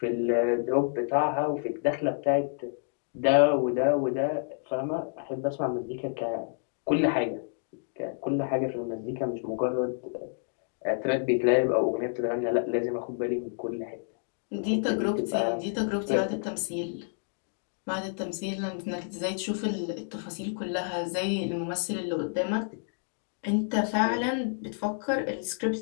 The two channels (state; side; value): silent; right; digital silence